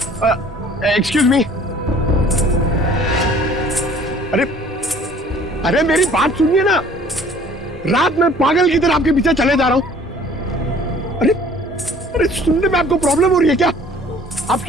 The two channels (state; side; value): normal; both; correlation 0.52